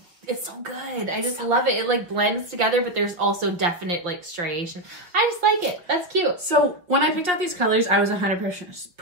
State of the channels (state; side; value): late; left; 5.5 ms